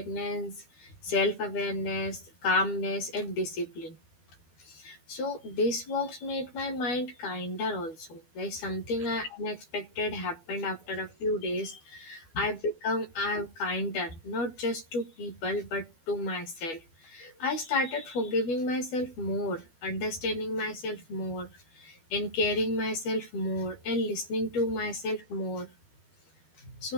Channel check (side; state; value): right; late; 12 ms